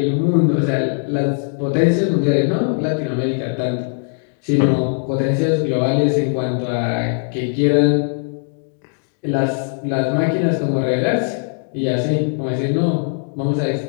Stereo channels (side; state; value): right; silent; 66 dB below the other